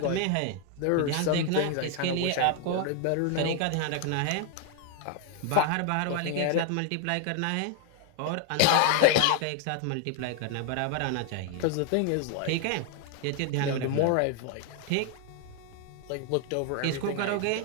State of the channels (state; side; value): different; both; correlation 0.00